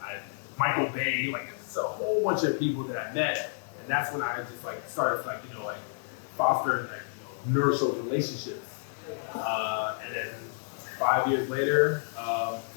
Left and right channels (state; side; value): silent; right; digital silence